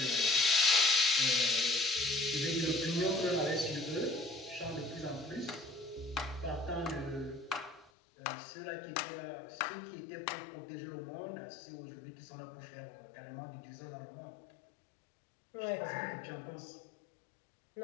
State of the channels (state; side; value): drops out; right; at 7.9 s